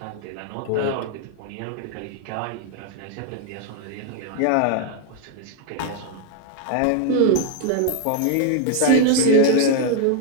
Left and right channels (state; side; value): different; both; correlation 0.00